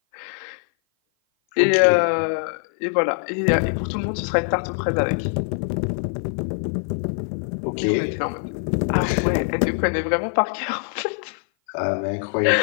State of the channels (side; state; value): right; silent; 56 dB below the other